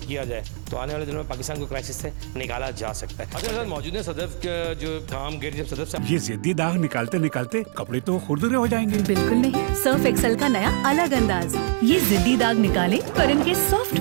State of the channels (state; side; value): silent; left; 57 dB below the other